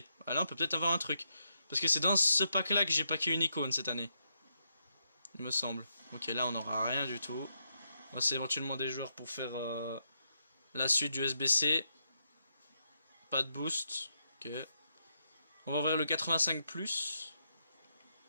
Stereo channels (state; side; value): inverted; both; correlation -0.81